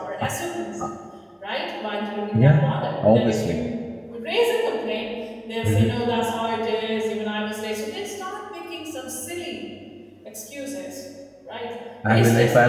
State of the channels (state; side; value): identical; both; correlation 1.00